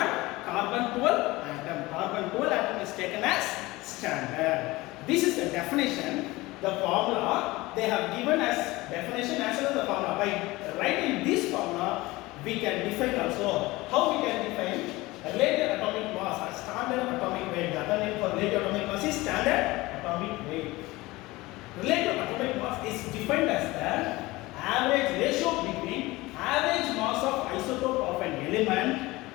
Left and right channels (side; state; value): right; quieter; 20.5 dB